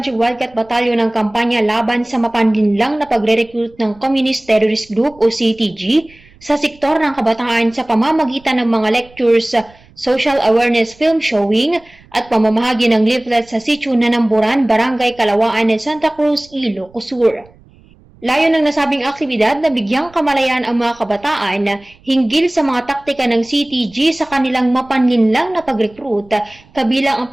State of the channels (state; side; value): noise; right; rumble, 28 dB below the sound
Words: Wildcat Battalion ang kampanya laban sa mapanlinlang na pagre-recruit ng Communist Terrorist Group o CTG sa sektor ng kabataan sa pamamagitan ng mga lectures, social awareness film showing at pamamahagi ng leaflets sa Sitio Nanamburan, Barangay Kalawaan ng Santa Cruz, Ilocos Sur. Layo ng nasabing aktibidad na bigyang kamalayan ang mga kabataan hinggil sa mga taktika ng CTG sa kanilang mapanlinlang na pag-recruit, kabilang ang